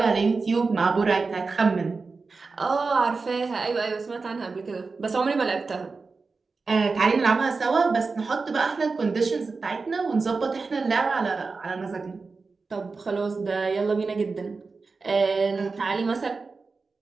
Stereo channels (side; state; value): left; quieter; 4.3 dB